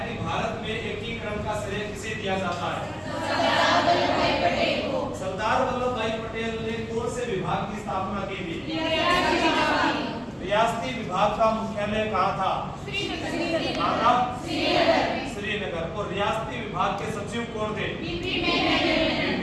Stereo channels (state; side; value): identical; both; correlation 1.00